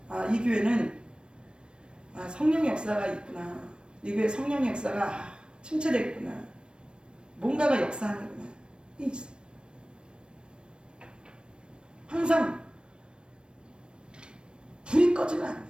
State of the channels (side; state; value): left; late; 0.054 ms